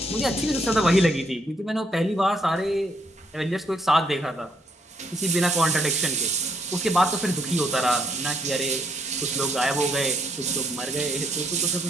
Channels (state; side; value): normal; both; correlation 0.71